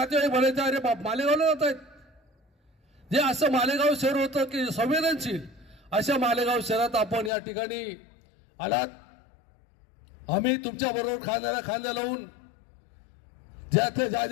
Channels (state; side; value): drops out; right; at 7.3 s